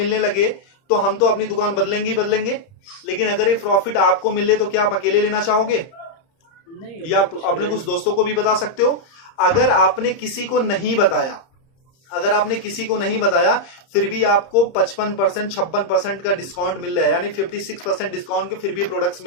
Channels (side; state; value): right; late; 31 ms